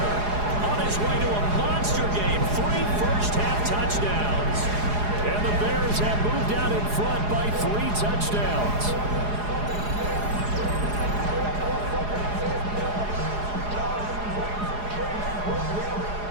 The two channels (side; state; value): left; late; 4.8 ms